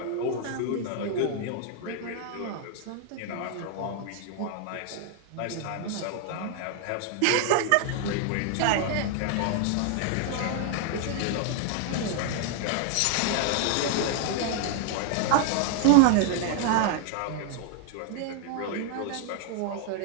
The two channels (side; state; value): both; different; correlation 0.00